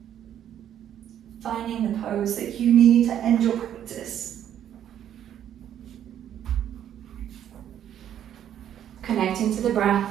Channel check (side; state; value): left; quieter; 10.3 dB